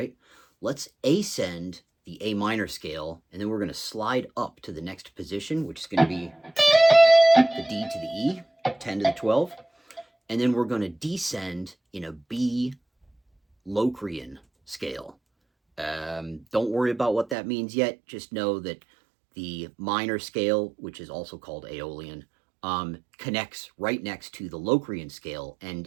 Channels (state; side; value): drops out; left; at 17.4 s